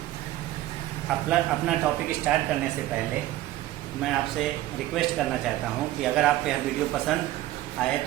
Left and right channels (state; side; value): quieter; left; 15.2 dB